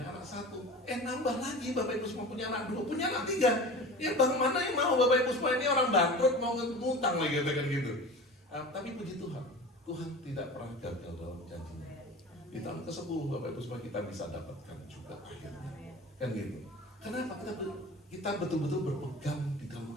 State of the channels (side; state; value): both; normal; correlation 0.35